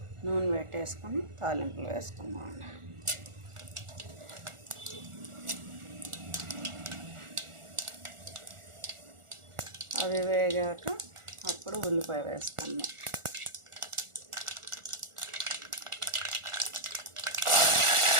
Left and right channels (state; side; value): late; left; 1.4 ms